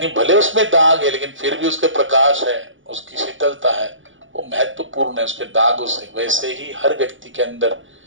भले उसमें दाग है, लेकिन फिर भी उसके प्रकाश है, उसकी शीतलता है, वो महत्वपूर्ण है उसके दागों से। वैसे ही हर व्यक्ति के अंदर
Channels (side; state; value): left; late; 0.56 ms